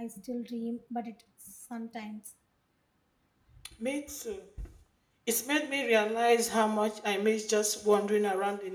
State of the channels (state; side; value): identical; both; correlation 1.00